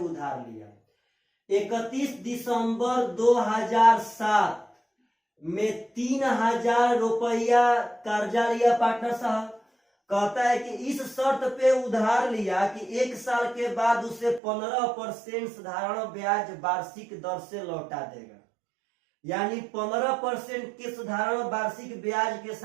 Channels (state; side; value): drops out; left; at 14.4 s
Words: उधार लिया। 31 दिसंबर 2007 में 3000 रुपया कर्जा लिया पार्टनर साहब। कहता है कि इस शर्त पे उधार लिया कि 1 साल के बाद उसे 15% साधारण ब्याज वार्षिक दर से लौटा देगा, यानी 15% के साधारण वार्षिक ब्याज के